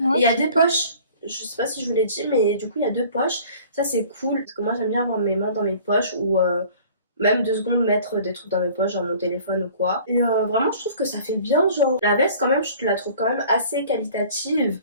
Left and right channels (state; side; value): inverted; both; correlation -0.49